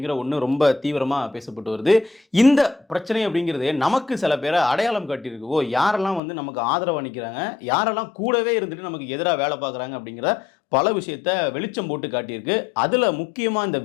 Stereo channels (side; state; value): right; drops out; at 6.2 s